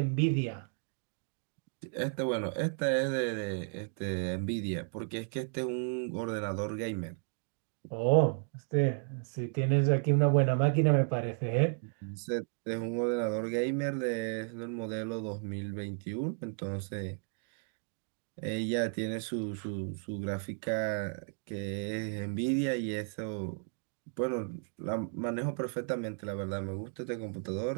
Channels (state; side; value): silent; left; 55 dB below the other